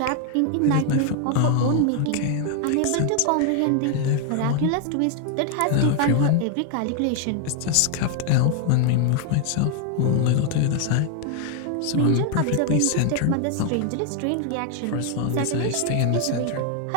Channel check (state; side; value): different; both; correlation 0.00